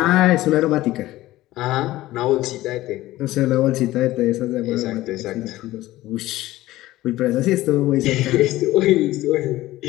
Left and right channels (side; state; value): right; quieter; 16.6 dB